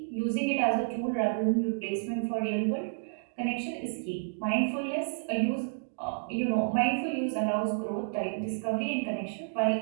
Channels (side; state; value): left; silent; digital silence